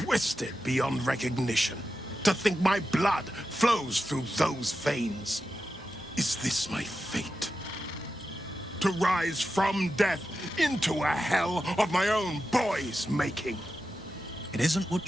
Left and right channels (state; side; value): normal; both; correlation 0.90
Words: beyond recognition. To think my blood flows through those veins. Is this my fate? To rise from death into a hell of my own boy's making? It isn't what